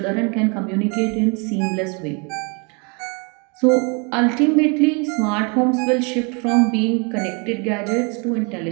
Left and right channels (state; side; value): quieter; left; 33.4 dB